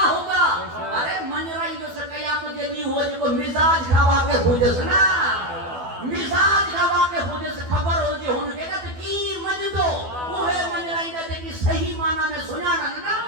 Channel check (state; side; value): late; left; 12 ms